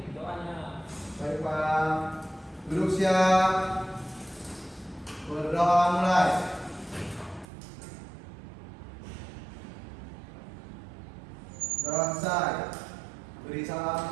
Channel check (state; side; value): drops out; left; at 7.5 s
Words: doanya. Baik Pak. Duduk siap. Berdoa mulai. Doa selesai. Beri